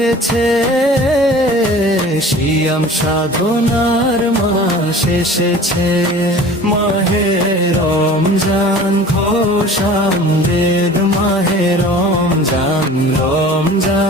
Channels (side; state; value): both; normal; correlation 0.43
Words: সিয়াম সাধনার মাস এসেছে। মাহে রমজান খোশামদেদ, মাহে রমজান